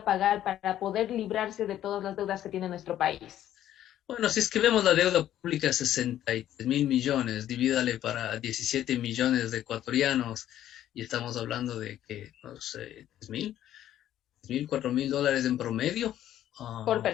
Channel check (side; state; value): right; quieter; 12.0 dB